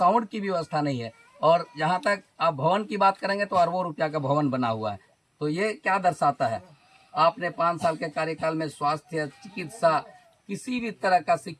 की व्यवस्था नहीं है, और जहाँ तक आप भवन की बात करेंगे तो अरबों रुपया का भवन बना हुआ है। तो ये क्या दर्शाता है? आपने 5 साल के कार्यकाल में स्वास्थ्य, चिकित्सा, किसी भी तरह का,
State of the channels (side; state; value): both; identical; correlation 1.00